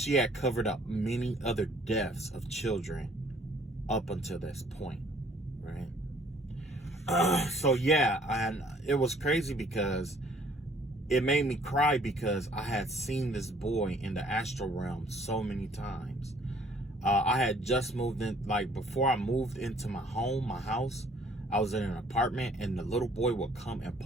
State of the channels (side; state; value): both; normal; correlation 0.59